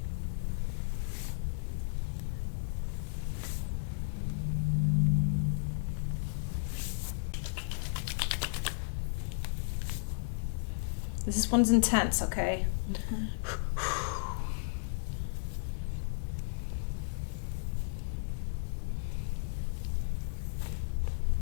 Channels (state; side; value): silent; right; digital silence